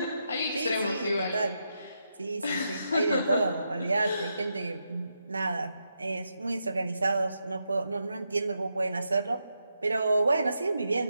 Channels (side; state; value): both; inverted; correlation -0.84